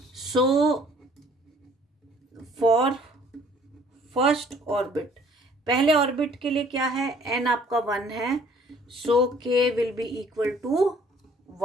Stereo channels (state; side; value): normal; both; correlation 0.57